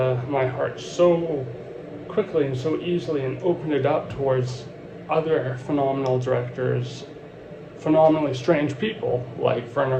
my heart so quickly and so easily, and opened it up towards other phenomenal directors, phenomenally strange people like Werner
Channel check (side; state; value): both; identical; correlation 1.00